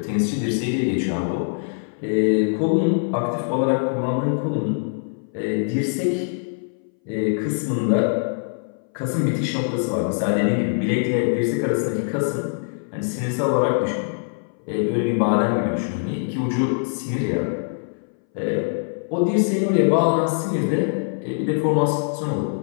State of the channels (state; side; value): silent; right; 62 dB below the other